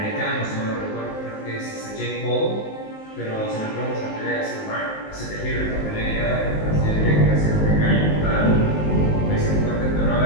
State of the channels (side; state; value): right; late; 19 ms